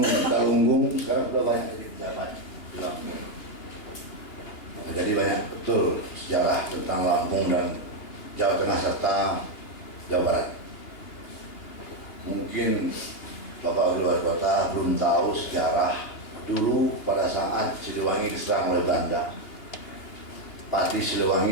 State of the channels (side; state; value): right; late; 2.9 ms